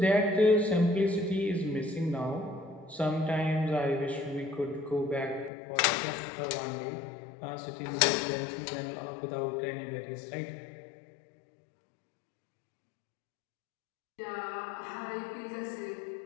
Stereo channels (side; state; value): right; drops out; at 5.5 s